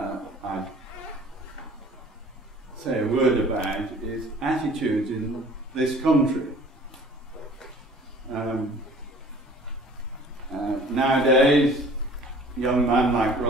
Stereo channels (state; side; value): normal; both; correlation 0.49